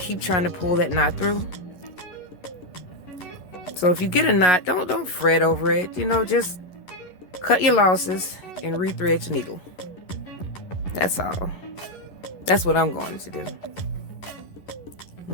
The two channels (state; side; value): late; right; 11 ms